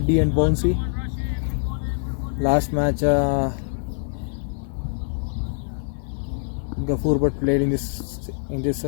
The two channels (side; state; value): right; silent; digital silence